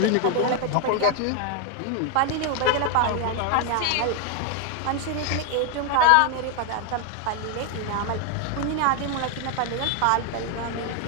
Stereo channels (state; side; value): different; both; correlation 0.01